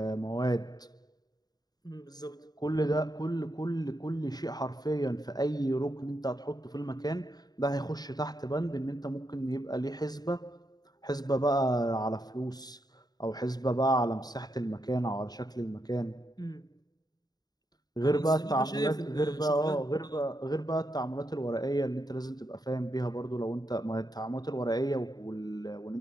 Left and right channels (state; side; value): late; right; 0.19 ms